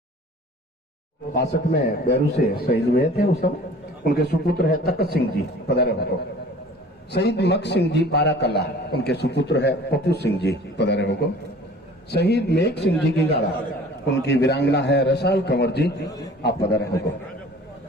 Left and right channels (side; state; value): both; normal; correlation 0.47